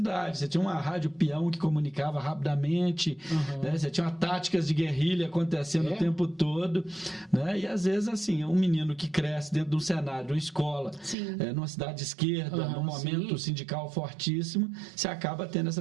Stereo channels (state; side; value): drops out; left; at 11.2 s